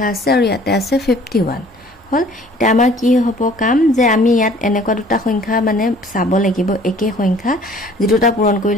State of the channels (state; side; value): normal; both; correlation 0.53